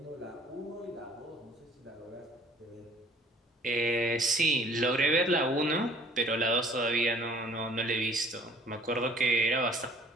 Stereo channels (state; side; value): normal; both; correlation 0.54